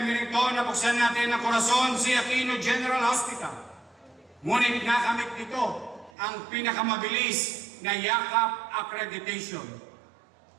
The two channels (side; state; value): left; drops out; at 6.1 s